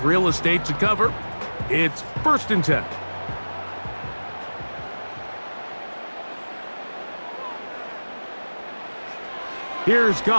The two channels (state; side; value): inverted; both; correlation -1.00